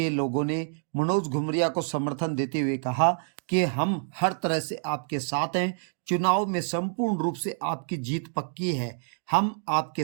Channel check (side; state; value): left; silent; 60 dB below the other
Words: लोगों ने मनोज घुमरिया को समर्थन देते हुए कहा कि हम हर तरह से आपके साथ हैं, चुनाव में संपूर्ण रूप से आपकी जीत पक्की है, हम आपके